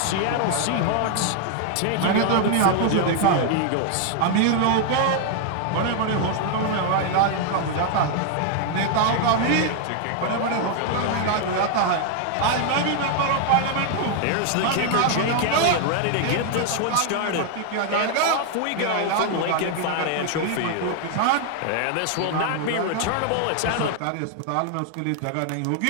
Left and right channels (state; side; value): different; both; correlation 0.00